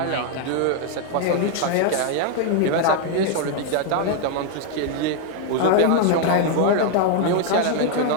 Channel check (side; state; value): both; different; correlation 0.00